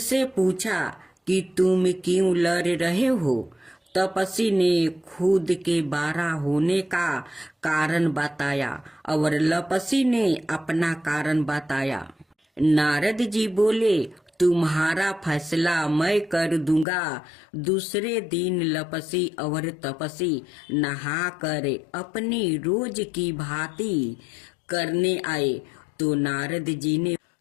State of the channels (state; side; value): drops out; right; at 16.9 s